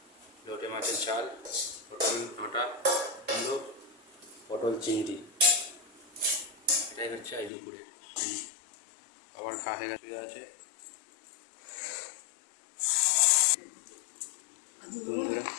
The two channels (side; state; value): right; drops out; at 7.5 s